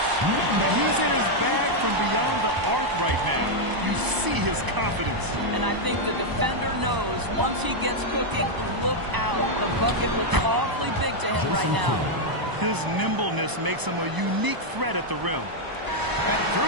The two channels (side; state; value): left; late; 1.0 ms